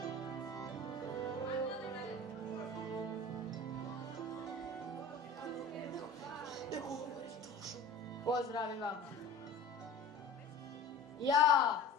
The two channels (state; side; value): quieter; right; 3.1 dB